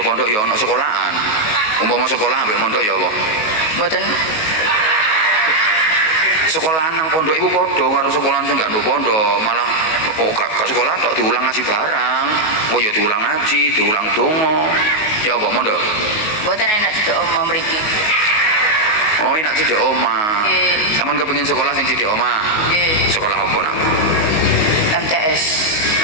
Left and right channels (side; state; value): right; late; 19 ms